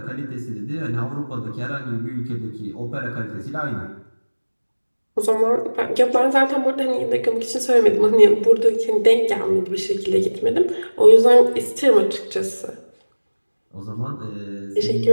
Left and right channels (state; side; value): inverted; both; correlation -1.00